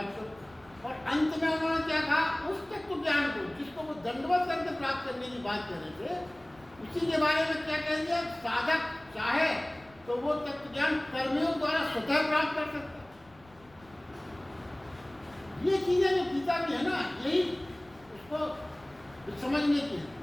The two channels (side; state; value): left; noise; rumble, 26 dB below the sound